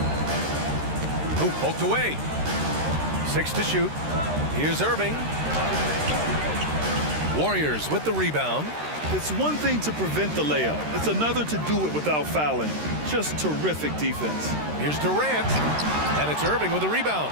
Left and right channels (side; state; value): left; late; 13 ms